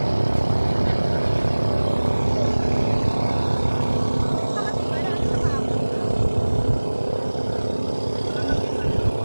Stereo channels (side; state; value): both; inverted; correlation -1.00